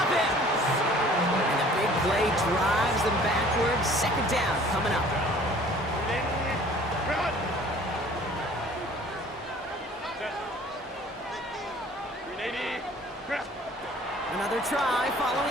him. And the big play drives them backwards. Second down coming up. Another try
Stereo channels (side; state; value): both; normal; correlation 0.51